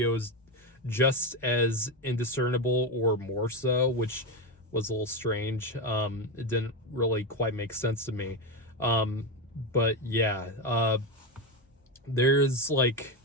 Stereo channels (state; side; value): normal; both; correlation 0.13